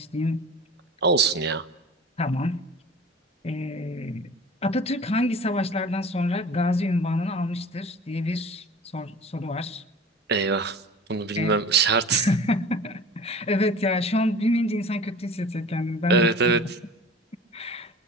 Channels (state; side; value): normal; both; correlation 0.40